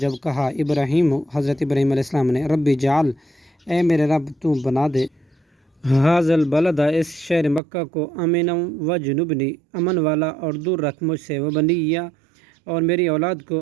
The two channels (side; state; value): left; drops out; at 7.6 s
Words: جب کہا ابراہیم، حضرت ابراہیم علیہ السلام نے، ربی جعل، اے میرے رب تو بنا دے، ھذا البلد، اس شہر مکہ کو، آمنا وجنبنی، امن والا اور دور رکھ مجھ سے، وبنیہ، اور میری اولاد